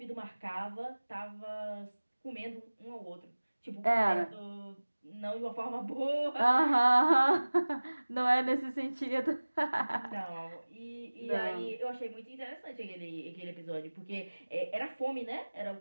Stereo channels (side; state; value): both; inverted; correlation -1.00